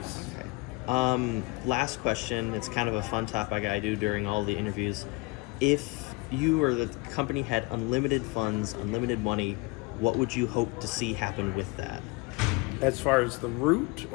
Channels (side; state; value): right; quieter; 25.3 dB